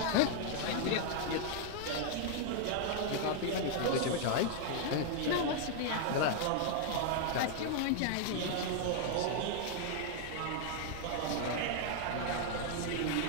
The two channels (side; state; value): both; different; correlation 0.00